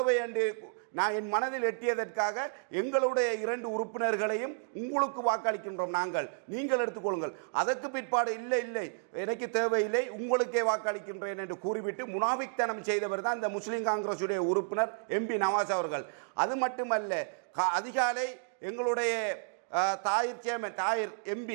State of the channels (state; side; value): silent; left; digital silence